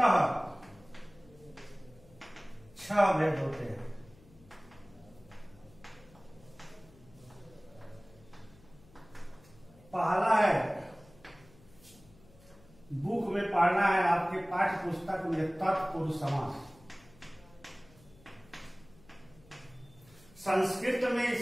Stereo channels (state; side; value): noise; left; hum, 25 dB below the sound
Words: 6 भेद होते हैं। पहला है, बुक में पढ़ना है आपके पाठ्य पुस्तक में, तत्पुरुष समास। संस्कृत में